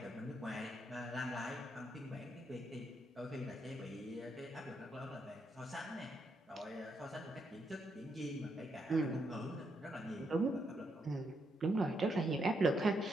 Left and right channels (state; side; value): normal; both; correlation 0.79